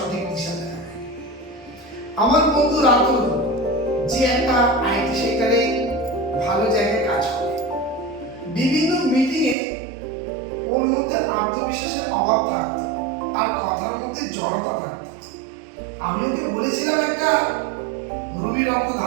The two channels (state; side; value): drops out; left; at 9.6 s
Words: দিশা দেখাবে। আমার বন্ধু রাতুল, যে একটা আইটি সেক্টরে ভালো জায়গায় কাজ করে, বিভিন্ন মিটিংয়ে ওর মধ্যে আত্মবিশ্বাসের অভাব থাকতো আর কথার মধ্যে জড়তা থাকতো। আমি ওকে বলেছিলাম একটা রুবি রত্ন